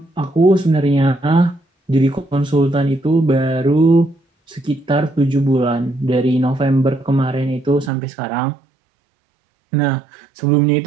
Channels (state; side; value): drops out; left; at 7.9 s